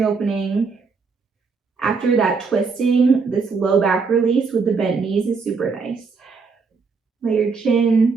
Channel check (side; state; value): left; quieter; 4.8 dB